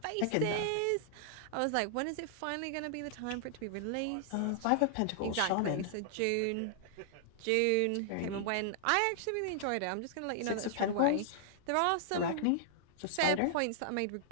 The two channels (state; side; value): different; both; correlation -0.01